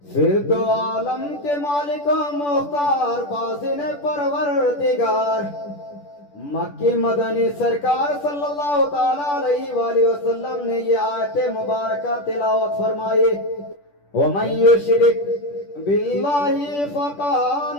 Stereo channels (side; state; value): right; late; 10 ms